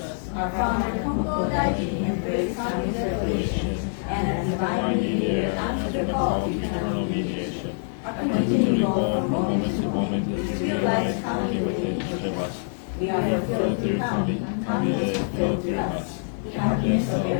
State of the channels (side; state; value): right; silent; digital silence